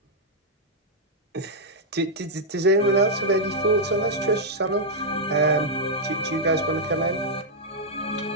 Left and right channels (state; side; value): normal; both; correlation -0.05